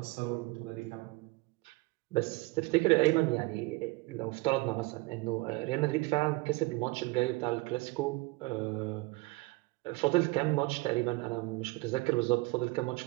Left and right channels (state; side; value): quieter; left; 23.4 dB